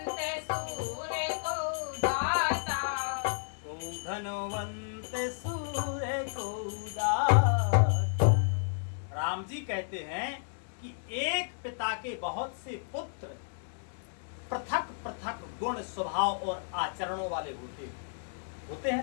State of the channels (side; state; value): right; silent; digital silence